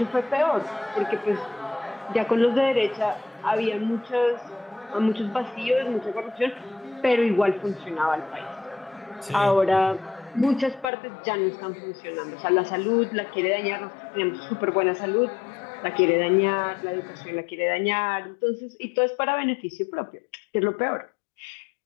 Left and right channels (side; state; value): right; drops out; at 10.9 s